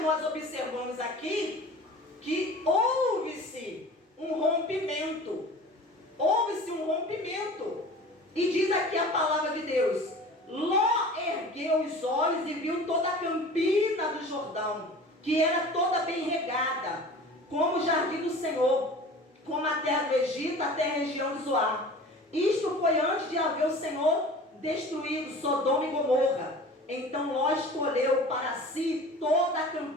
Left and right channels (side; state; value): both; normal; correlation 0.41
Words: nós observamos aqui que houve-se um rompimento. Houve-se um rompimento. E diz aqui a palavra de Deus: Ló ergueu os olhos e viu toda a campina do Jordão, que era toda bem regada, como o jardim do Senhor, como a terra do Egito, até a região de Zoar. Isto foi antes de haver o Senhor destruído Sodoma e Gomorra. Então Ló escolheu para si toda a